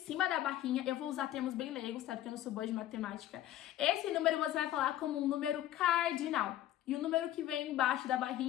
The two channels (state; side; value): quieter; right; 13.1 dB